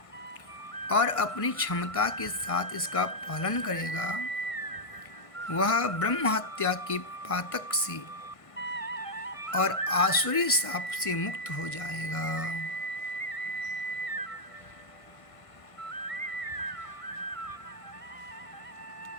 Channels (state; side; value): late; right; 1.5 ms